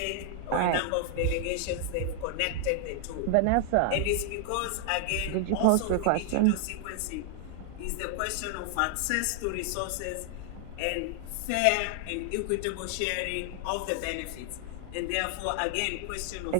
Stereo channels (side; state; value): both; different; correlation 0.00